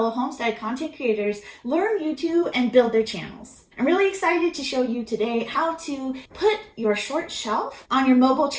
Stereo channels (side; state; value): both; identical; correlation 1.00